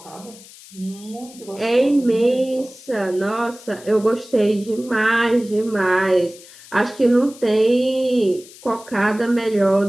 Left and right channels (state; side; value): noise; left; hiss, 20 dB below the sound